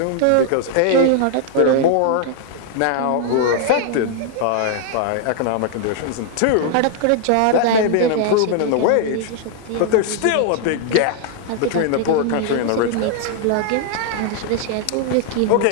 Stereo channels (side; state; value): both; different; correlation 0.00